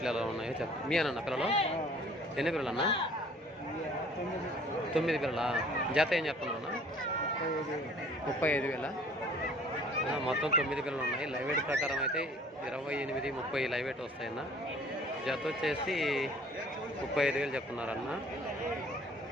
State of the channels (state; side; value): normal; both; correlation 0.53